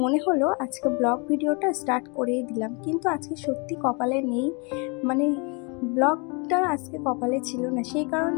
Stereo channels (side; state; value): right; quieter; 32.8 dB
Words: মনে হলো আজকে ব্লগ ভিডিওটা স্টার্ট করেই দিলাম। কিন্তু আজকে সত্যি কপালে নেই, মানে ব্লগটা আজকে কপালে ছিল না, সেই